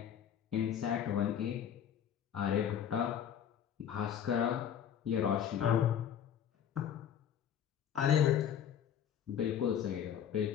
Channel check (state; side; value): quieter; right; 9.2 dB